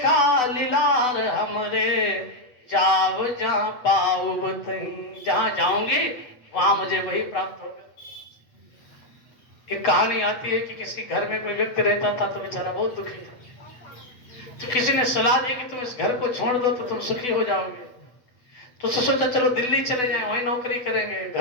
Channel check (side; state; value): right; late; 8.0 ms